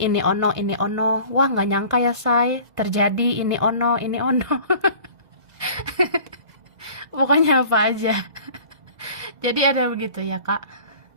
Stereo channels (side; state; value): left; late; 2.0 ms